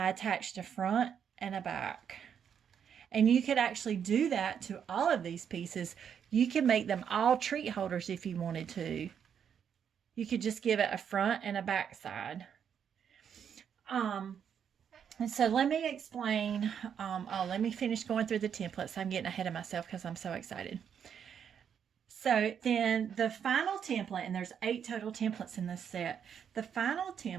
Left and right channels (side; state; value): left; quieter; 8.0 dB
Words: attached a front and a back. And you could actually do that to all of these pieces. You can make them all treat holders if you wanted to. You could just give it a front and a back side. And so let me explain, let me finish going through the templates. I'm getting ahead of myself because I'm so excited. So then the final template, and there's 8 total templates in this set. The final